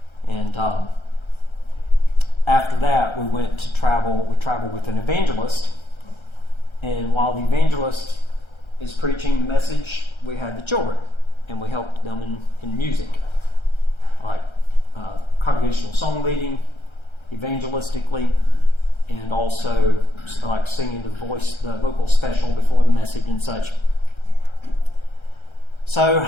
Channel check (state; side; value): late; right; 1.3 ms